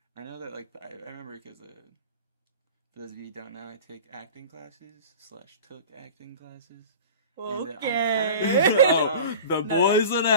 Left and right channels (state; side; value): inverted; both; correlation -0.37